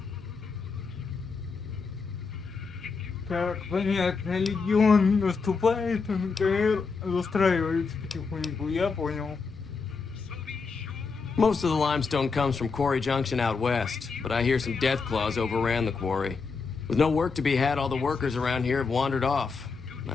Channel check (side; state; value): right; quieter; 4.8 dB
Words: Так, понятно, легион наступает, НКР застраивается потихоньку, я понял. Most of the limestone comes from Quarry Junction out west, but I hear some death claws overran the quarry. With no work to be had, all the workers around here have wandered off.